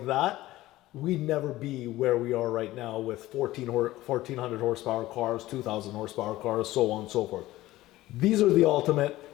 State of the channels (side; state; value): right; quieter; 16.6 dB